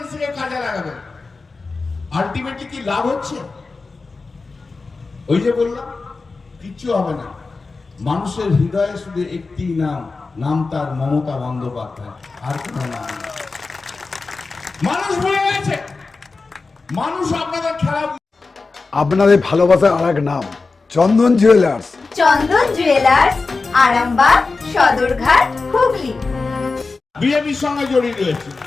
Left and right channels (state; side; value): quieter; right; 4.0 dB